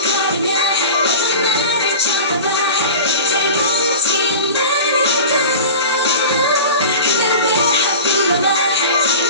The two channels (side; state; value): both; inverted; correlation -0.33